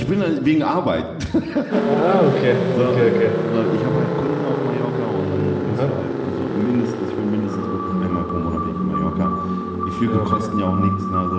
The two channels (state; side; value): identical; both; correlation 1.00